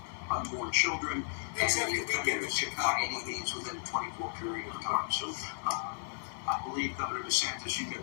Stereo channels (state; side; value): silent; right; digital silence